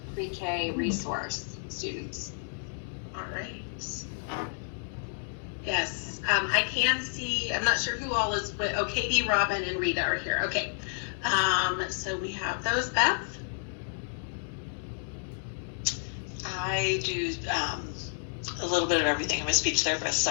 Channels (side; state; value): right; silent; digital silence